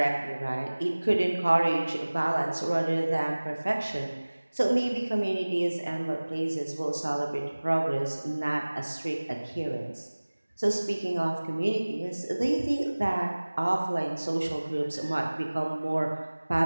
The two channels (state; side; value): inverted; both; correlation -1.00